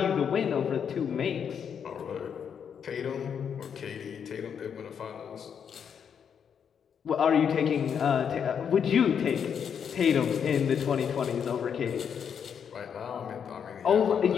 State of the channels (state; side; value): quieter; right; 7.6 dB